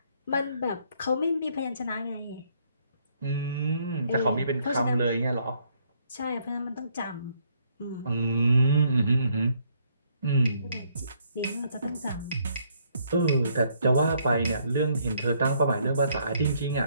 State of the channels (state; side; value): inverted; both; correlation -0.69